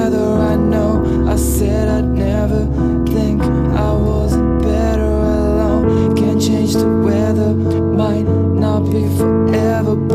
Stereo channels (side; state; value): both; identical; correlation 1.00